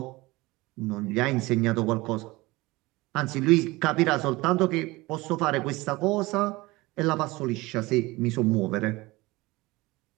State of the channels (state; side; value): quieter; left; 21.4 dB